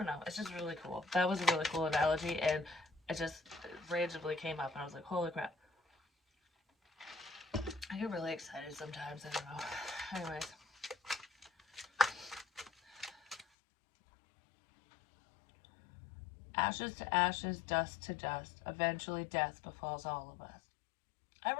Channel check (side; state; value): right; drops out; at 13.5 s